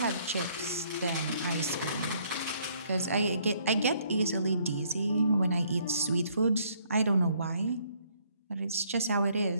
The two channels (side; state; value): both; inverted; correlation -0.66